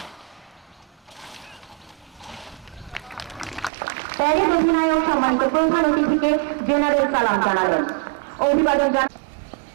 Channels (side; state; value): left; drops out; at 3.7 s